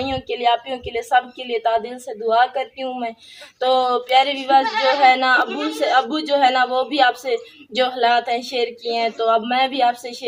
के लिए, आपियों के लिए, सबके लिए तादिल से दुआ करती हूँ मैं। तो प्यारे व्यूअर्स जो है ना, अबू जो है ना वो भी आपसे जो हालात हैं शेयर किए हैं, तो अब मैं भी आपसे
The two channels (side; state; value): both; identical; correlation 1.00